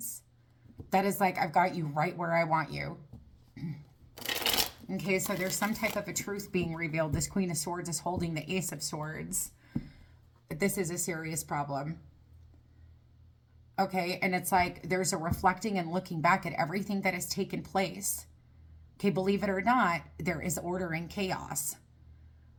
That is like, I've got you right where I want you. Okay, so there's some type of a truth being revealed. This Queen of Swords is holding the Ace of Swords. But this is a serious problem. Okay, and it's like there's a reflecting and looking back at everything that has taken place. Okay, believe it or not, there is order in chaos.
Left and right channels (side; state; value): both; identical; correlation 1.00